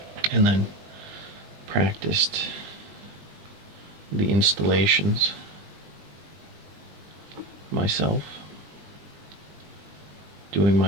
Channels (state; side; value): late; left; 20 ms